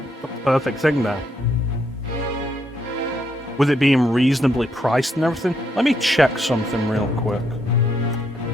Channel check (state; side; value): normal; both; correlation 0.76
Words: perfect thing there. With it being reasonably priced and everything. Let me check something real quick.